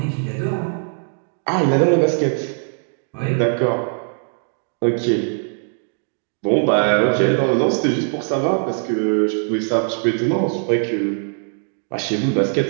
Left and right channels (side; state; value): left; silent; 64 dB below the other